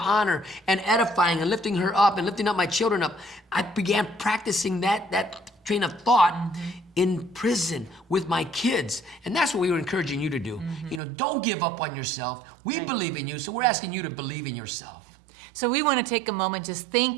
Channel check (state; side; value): drops out; left; at 11.0 s